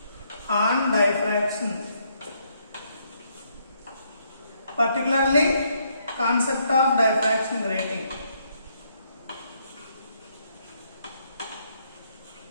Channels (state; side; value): inverted; both; correlation -0.73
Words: on diffraction, particularly concept of diffraction grating.